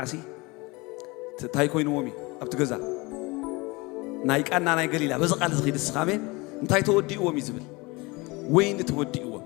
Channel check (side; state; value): right; quieter; 24.8 dB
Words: ታይ ኮይኑዎም እዩ ኣብቲ ገዛ ናይ ቃና ናይ ገሊላ በዚ ቃል ዝኺድ ስኻሜን እንታይ ተወዲእዎም እዩ ዝብል ወይኒ ተወዲእዎም